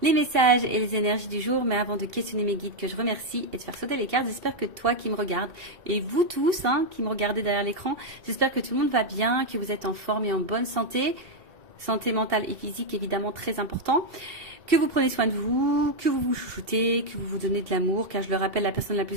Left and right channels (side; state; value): left; late; 2.7 ms